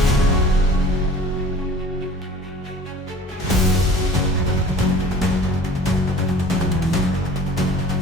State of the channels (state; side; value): normal; both; correlation 0.46